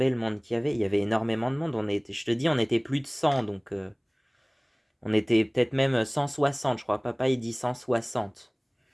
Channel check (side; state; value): both; identical; correlation 1.00